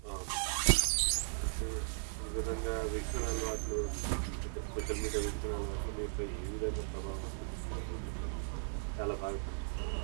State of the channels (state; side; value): silent; left; digital silence